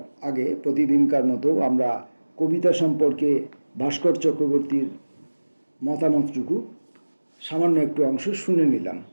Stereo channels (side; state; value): both; inverted; correlation -1.00